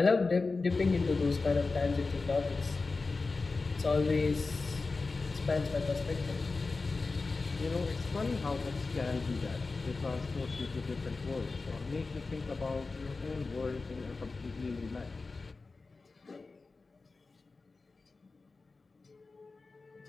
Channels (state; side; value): quieter; right; 3.9 dB